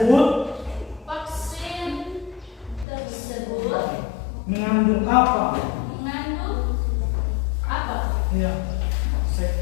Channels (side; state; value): right; drops out; at 2.9 s